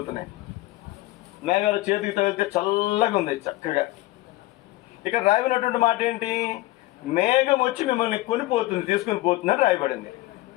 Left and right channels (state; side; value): quieter; right; 18.5 dB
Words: చేతికి తగిలితే చల్లగా ఉంది, చక్కగా. ఇక్కడ రాయబడినటువంటి మాట ఏంటి? మేఘం వచ్చి మిమ్మల్ని కొనిపోతుంది, తీసుకుని పోతుందని రాయబడింది.